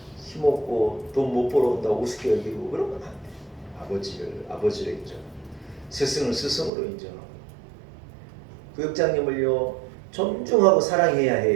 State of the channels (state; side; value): drops out; left; at 6.7 s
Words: 힘없고 돈 못 벌어온다고 우습게 여기고 그러면 안 돼요. 아버지를 인정, 스승을 스승으로 인정하고 구역장님을요 존중하고 사랑해야